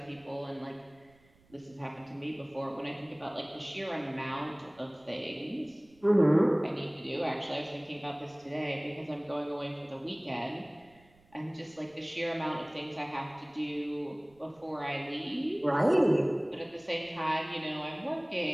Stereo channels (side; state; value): right; noise; rumble, 30 dB below the sound